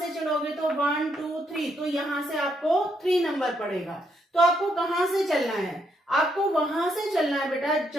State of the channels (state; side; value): normal; both; correlation 0.76